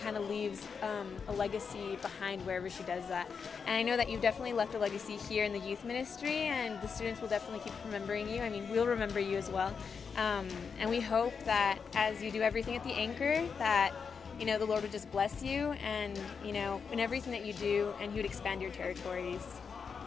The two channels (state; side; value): quieter; right; 5.9 dB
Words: of leaves a legacy behind wherever she does that. And I know that you've definitely left a legacy here in the youth ministry, and the students will definitely keep remembering you. I mean, we'll remember you as well. And we hope that as you do everything at the Anchor, that you know, the Lord would just bless you, and you know, in everything that you do, and He would expand your territories.